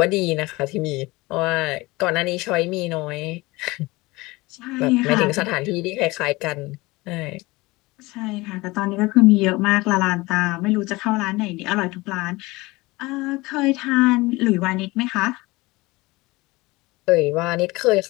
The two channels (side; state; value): right; quieter; 21.8 dB